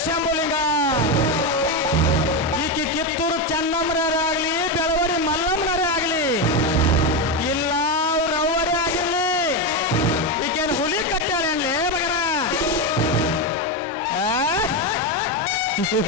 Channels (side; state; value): both; normal; correlation 0.11